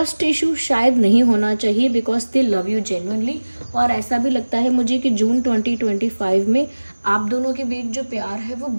इशू शायद नहीं होना चाहिए because they love you genuinely. और ऐसा भी लगता है मुझे कि जून 2025 में आप दोनों के बीच जो प्यार है वो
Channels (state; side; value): inverted; both; correlation -1.00